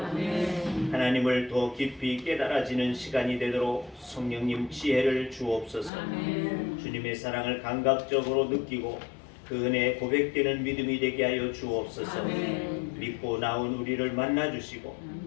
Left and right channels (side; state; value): right; drops out; at 5.9 s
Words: 하나님을 더 깊이 깨달아지는 시간이 되도록 성령님 지혜를 주옵소서. 아멘. 주님의 사랑을 감각적으로 느끼고 그 은혜에 고백되는 믿음이 되게 하여 주옵소서. 아멘. 믿고 나온 우리를 만나주시고